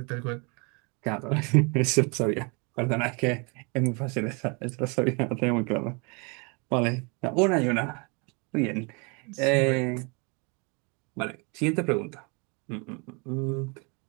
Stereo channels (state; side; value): quieter; left; 31.8 dB